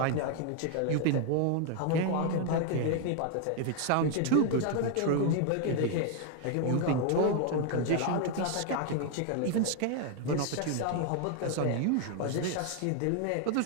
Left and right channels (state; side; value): different; both; correlation 0.00